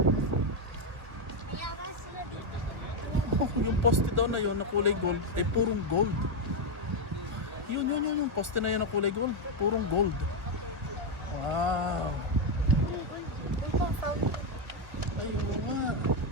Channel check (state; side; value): late; left; 1.1 ms